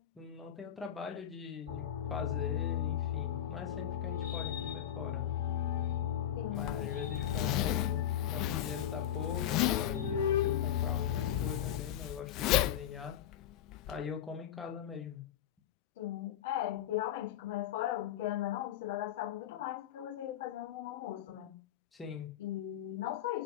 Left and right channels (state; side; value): quieter; right; 10.8 dB